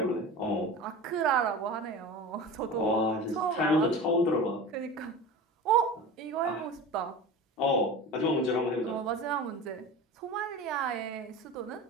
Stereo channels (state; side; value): normal; both; correlation 0.32